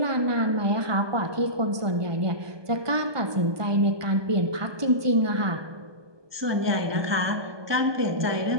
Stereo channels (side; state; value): left; late; 1.2 ms